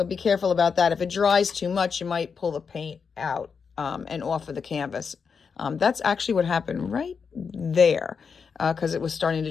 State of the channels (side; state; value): right; quieter; 5.8 dB